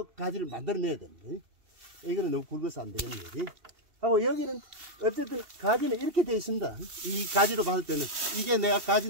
가지를 만들어내야 됩니다. 이거는 너무 굵어서 안 되겠네요. 하고 여기는 어쨌든 가지는 이렇게 되어 있습니다. 이 가지로 봤을 때는 이게 내가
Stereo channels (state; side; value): late; left; 2.7 ms